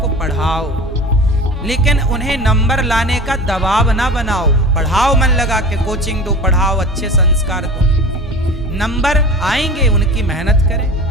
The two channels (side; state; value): both; normal; correlation 0.35